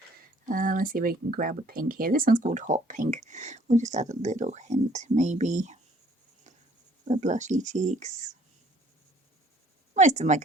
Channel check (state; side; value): normal; both; correlation 0.60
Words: Let's see if we can grab a pink here. This one's called Hot Pink. We'll just add a little hint, maybe, the blushy cheeks. Most of my